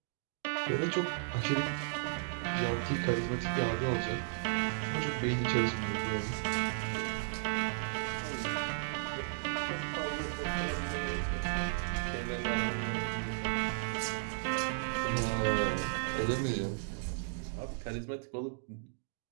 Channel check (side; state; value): left; silent; digital silence